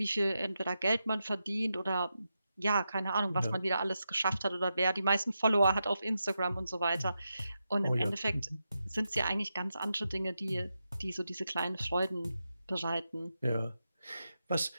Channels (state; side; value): inverted; both; correlation -0.88